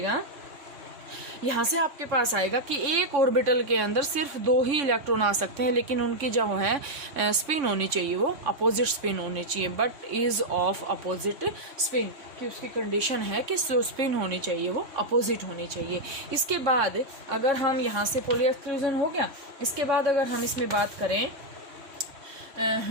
यहाँ से आपके पास आएगा कि एक ऑर्बिटल के अंदर सिर्फ 2 ही इलेक्ट्रॉन आ सकते हैं, लेकिन उनकी जो है स्पिन होनी चाहिए वो अपोजिट स्पिन होनी चाहिए, but is of opposite spin, कि उसकी कंडीशन है कि जो स्पिन होनी चाहिए वो अपोजिट होनी चाहिए। इसके बाद अगर हम यहाँ से पॉली एक्सक्लूजन हो गया, इसके बाद अगर हम इसमें बात करें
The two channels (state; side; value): late; left; 3.6 ms